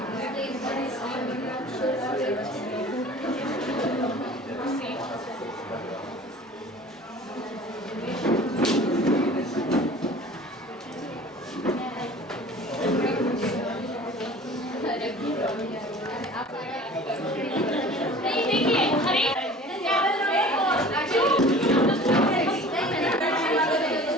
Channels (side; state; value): both; normal; correlation 0.44